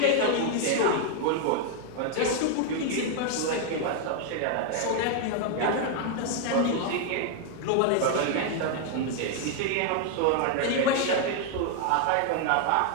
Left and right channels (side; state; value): both; different; correlation 0.00